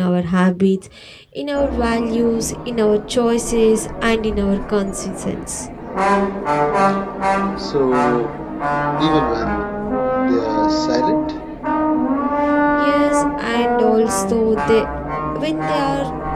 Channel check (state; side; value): identical; both; correlation 1.00